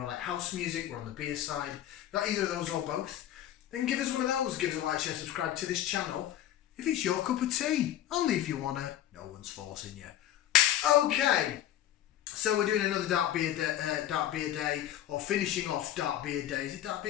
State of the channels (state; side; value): quieter; right; 12.1 dB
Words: like house music. We're on the beer side. If not either of those or both, then give us one of those. Give us a like, share, subscribe to this channel if it's your cup of tea. Only if you wanna. No one's forcing you. Okay. So we're doing another dark beer day, or finishing off dark beer day. Is it dark